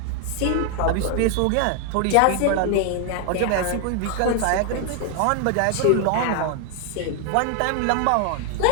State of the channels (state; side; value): different; both; correlation 0.00